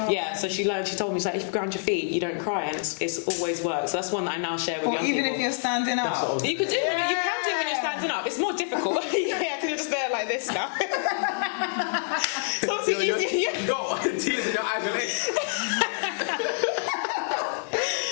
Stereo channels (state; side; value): silent; right; digital silence